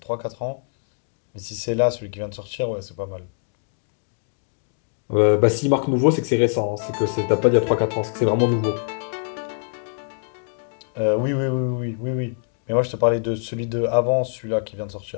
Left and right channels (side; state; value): right; silent; digital silence